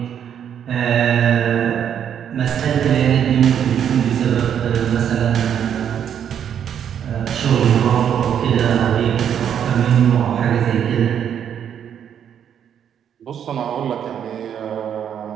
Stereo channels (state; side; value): quieter; left; 8.9 dB